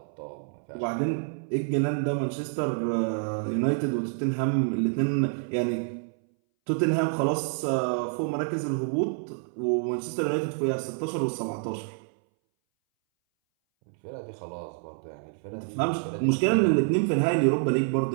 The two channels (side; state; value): left; silent; 60 dB below the other